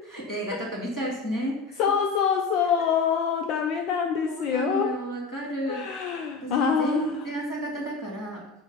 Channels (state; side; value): quieter; right; 4.5 dB